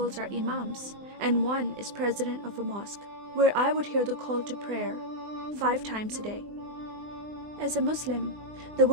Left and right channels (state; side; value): late; left; 20 ms